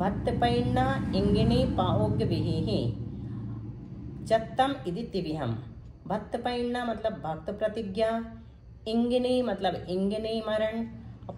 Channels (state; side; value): identical; both; correlation 1.00